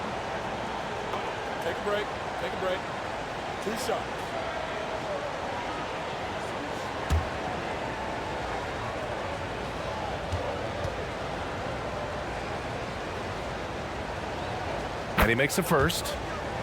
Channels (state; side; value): identical; both; correlation 1.00